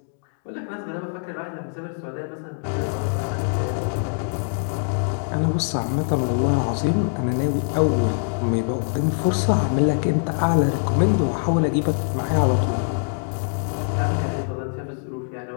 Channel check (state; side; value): silent; right; digital silence